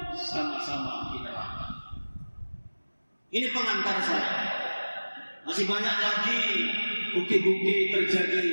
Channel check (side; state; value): both; inverted; correlation -1.00